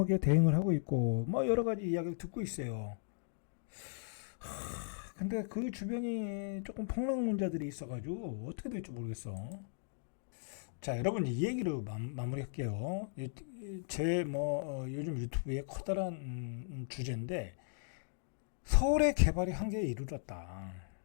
대응을 하고 있고 뭐 여러 가지 이야기를 듣고 있어요. 근데 그 주변이 조금 폭락론자들이 있어가지고 어떻게 될지 모르겠어. 자, 여러분 이 얘기로 마무리할게요. 제 요즘 유튜브의 커다란 주제인데 서울의 개발이 한계에 이르렀다.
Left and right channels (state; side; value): silent; right; digital silence